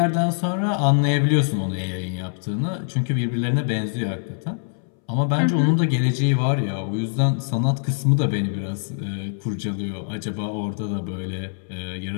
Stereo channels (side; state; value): right; silent; 63 dB below the other